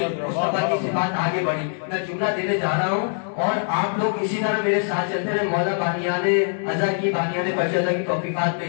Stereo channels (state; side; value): silent; right; digital silence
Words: مصطفیٰ کی صفات آگے بڑھی۔ میں جملہ دینے جا رہا ہوں اور آپ لوگ اسی طرح میرے ساتھ چلتے رہے۔ مولا بانیان عزا کی، بانیان فرجدہ کی توفیقات میں